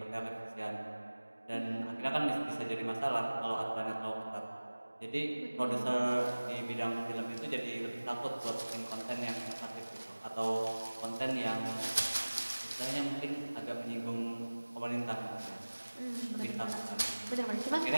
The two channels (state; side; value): inverted; both; correlation -1.00